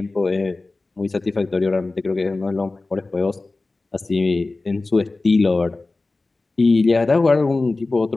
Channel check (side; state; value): right; quieter; 3.3 dB